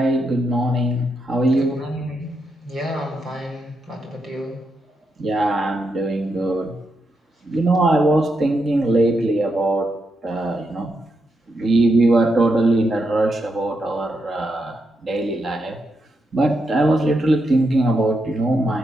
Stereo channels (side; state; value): both; normal; correlation 0.83